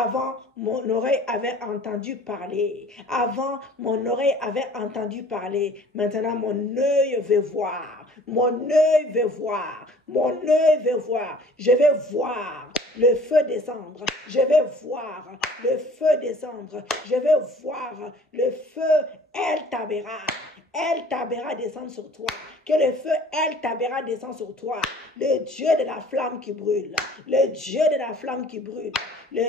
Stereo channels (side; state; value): both; normal; correlation 0.50